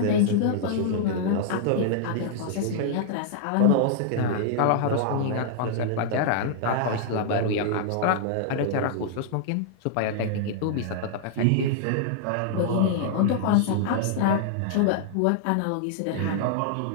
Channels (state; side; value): different; both; correlation -0.01